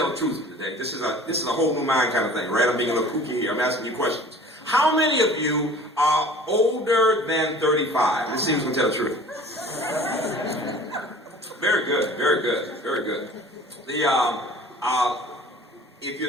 the truth today. This is a whole new mind kind of thing, right? I'm being a little kooky here. I'm asking you questions. How many of you are older than 35? Let's see who's going to tell the truth. Very good, very good, very good. If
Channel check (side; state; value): both; normal; correlation 0.46